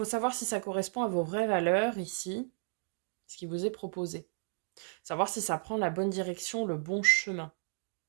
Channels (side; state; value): left; silent; 55 dB below the other